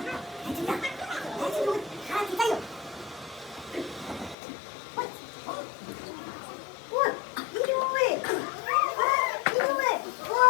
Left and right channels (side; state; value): right; drops out; at 4.4 s